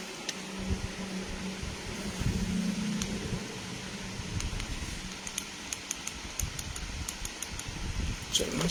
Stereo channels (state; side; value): identical; both; correlation 1.00